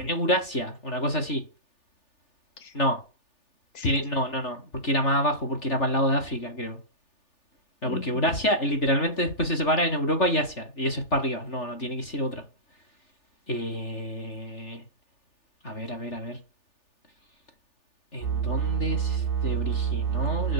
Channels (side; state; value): right; late; 3.4 ms